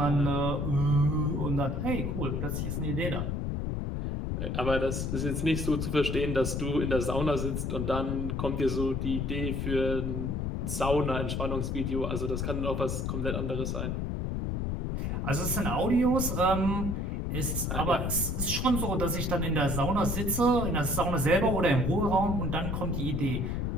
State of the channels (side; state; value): left; noise; rumble, 1 dB below the sound